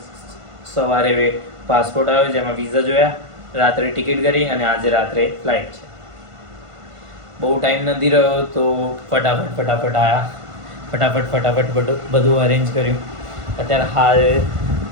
સવારે પાસપોર્ટ આવ્યો જેમાં વિઝા જોયા, રાત્રે ટિકિટ કરી અને આજે રાત્રે ફ્લાઇટ છે. બહુ ટાઈમ નથી રહ્યો તો ફટાફટ આવ્યા, ફટાફટ બધું અરેન્જ કર્યું. અત્યારે હાલ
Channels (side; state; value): left; late; 1.5 ms